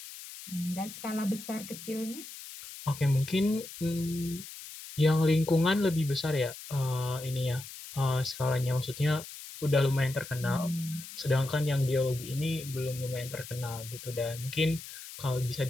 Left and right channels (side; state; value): left; noise; hiss, 13 dB below the sound